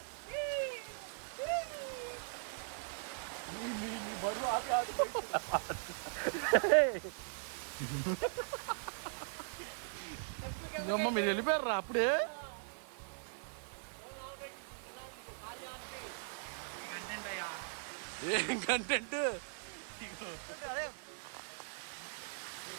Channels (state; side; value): silent; left; digital silence